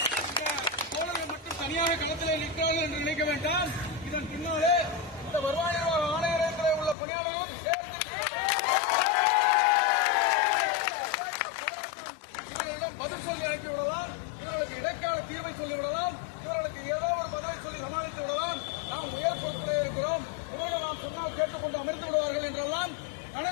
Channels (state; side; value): drops out; right; at 7.0 s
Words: தோழர்கள் மட்டும் தனியாக களத்திலே நிற்கிறார்கள் என்று நினைக்க வேண்டாம். இதன் பின்னாலே இந்த வருவாய் நிர்வாக ஆணையரகத்திலே உள்ள பணியாளர்களும் இவர்களிடம் பதில் சொல்லி அனுப்பிவிடலாம், இவர்களுக்கு இடைக்கால தீர்வை சொல்லிவிடலாம், இவர்களுக்கு ஏதோ ஒரு பதவி சொல்லி சமாளித்து விடலாம். நாம் உயர் பொறுப்பிலே இருக்கிறோம், இவர்கள் நாம் சொன்னால் கேட்டுக்கொண்டு அமர்ந்து விடுவார்கள் என்றெல்லாம்